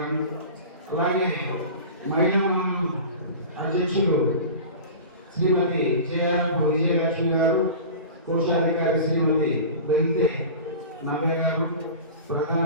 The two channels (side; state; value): both; inverted; correlation -0.35